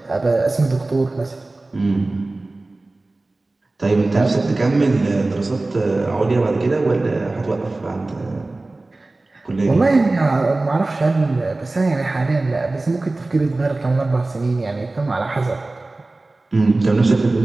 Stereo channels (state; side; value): quieter; left; 3.1 dB